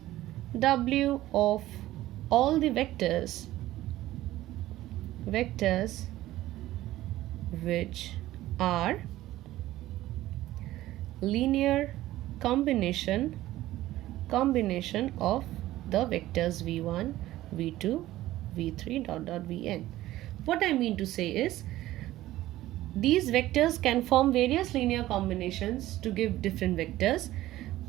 W of all the vectors which are linear combination of the vectors v1, v2, v3, vn. What I mean to say is, these vectors can form various linear combinations to give different vectors.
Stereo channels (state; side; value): quieter; left; 15.4 dB